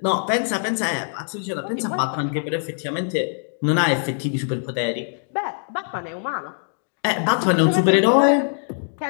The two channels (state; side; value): silent; right; digital silence